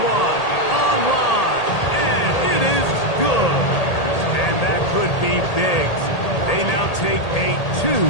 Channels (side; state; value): right; late; 1.8 ms